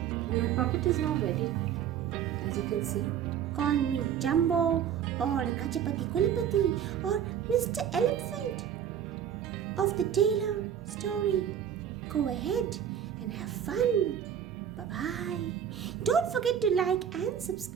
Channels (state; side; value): quieter; left; 9.0 dB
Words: My puppet is now ready, as you can see. Call me Jumbo or Gajapati Kulipati or Mr. Elephant of the Taylor story. Go ahead and have fun. Bye-bye. Don't forget to like and